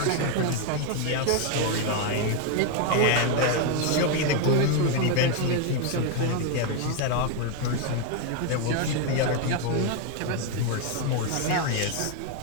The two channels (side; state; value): both; different; correlation 0.01